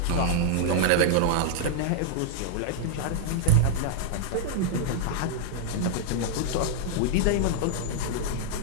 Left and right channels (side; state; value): both; different; correlation -0.01